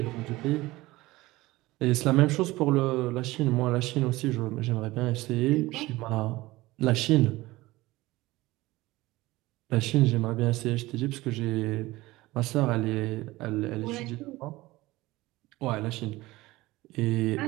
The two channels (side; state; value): left; quieter; 19.2 dB